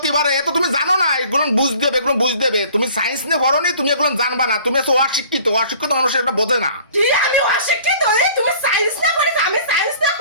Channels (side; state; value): both; inverted; correlation -0.51